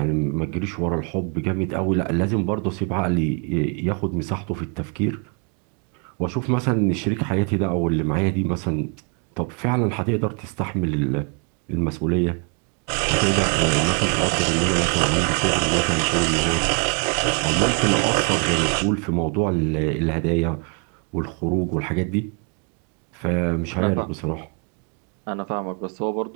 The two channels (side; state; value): left; quieter; 37.3 dB